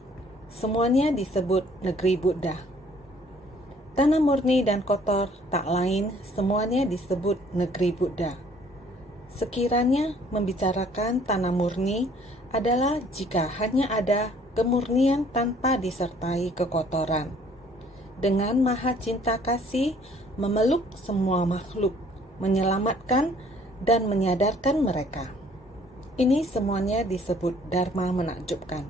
Semuanya disebut negeri Buddha. Tanah murni dan kotor tak lain semuanya disebut negeri Buddha. Sekiranya membicarakan tanah murni adalah jika hanya ada kemurnian tanpa disertai kekotoran. Dengan maha cinta kasih memeluk semua makhluk, menyelamatkan dan menyadarkan mereka. Ini semuanya disebut dharma menakjubkan.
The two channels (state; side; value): normal; both; correlation 0.59